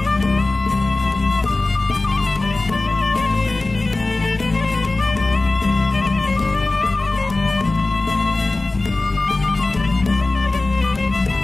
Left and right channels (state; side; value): quieter; right; 3.1 dB